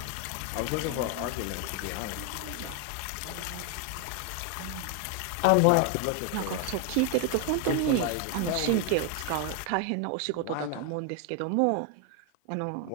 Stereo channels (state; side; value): different; both; correlation 0.01